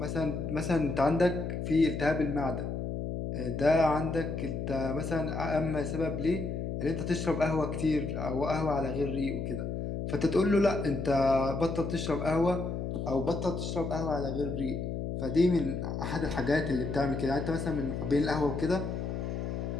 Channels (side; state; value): left; noise; hum, 3 dB below the sound